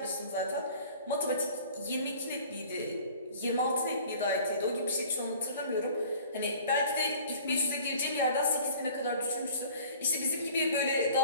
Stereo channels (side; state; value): both; inverted; correlation -0.48